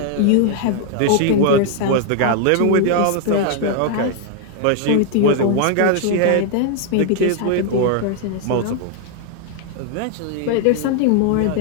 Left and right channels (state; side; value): different; both; correlation 0.00